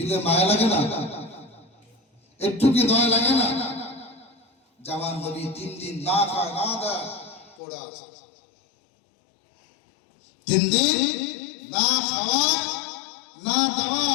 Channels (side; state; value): right; drops out; at 7.6 s